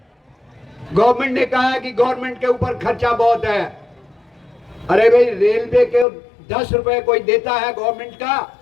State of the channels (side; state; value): right; drops out; at 6.1 s